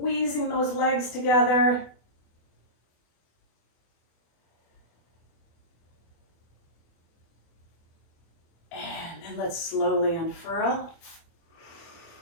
those legs together. And then let's slowly unfurl.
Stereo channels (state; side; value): late; right; 24 ms